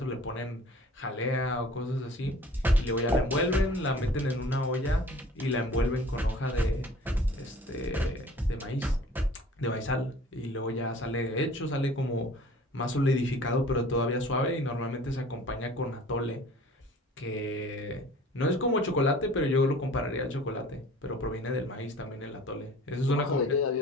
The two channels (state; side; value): normal; both; correlation 0.47